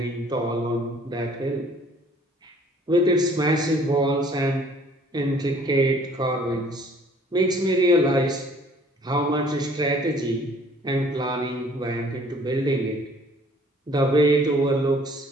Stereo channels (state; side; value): normal; both; correlation 0.56